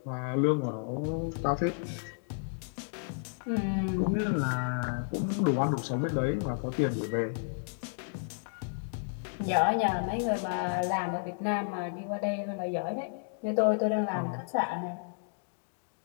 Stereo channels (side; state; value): right; silent; digital silence